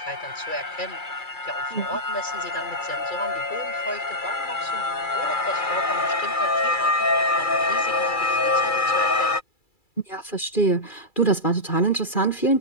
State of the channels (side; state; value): right; late; 2.3 ms